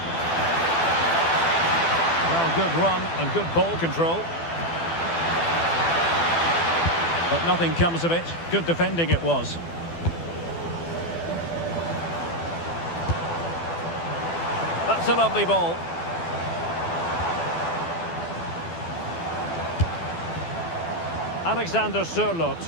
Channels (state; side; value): late; right; 12 ms